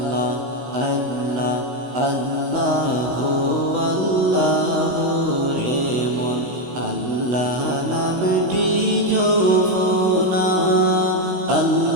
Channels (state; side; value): late; left; 16 ms